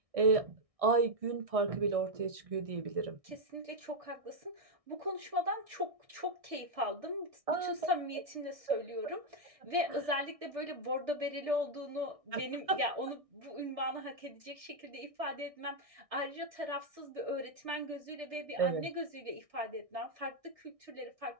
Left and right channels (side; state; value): left; late; 1.6 ms